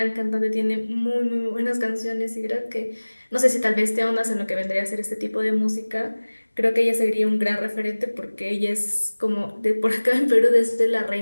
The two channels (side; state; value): both; inverted; correlation -1.00